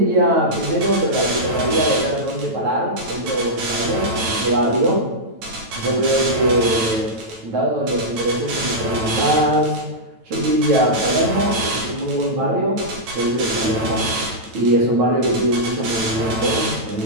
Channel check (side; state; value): left; late; 9.0 ms